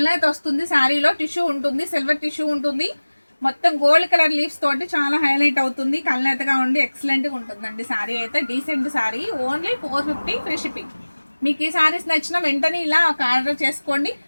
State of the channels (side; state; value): both; inverted; correlation -1.00